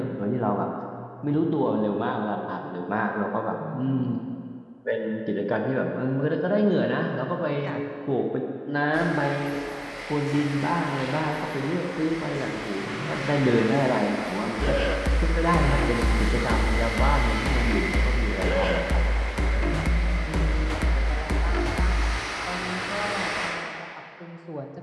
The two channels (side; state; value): both; identical; correlation 1.00